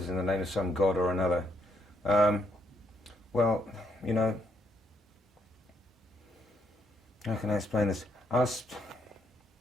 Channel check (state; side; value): normal; both; correlation 0.74